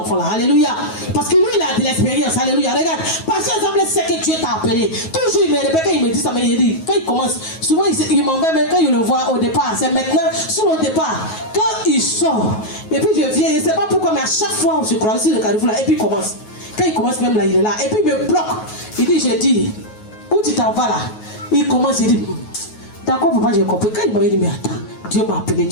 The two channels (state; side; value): late; right; 9.4 ms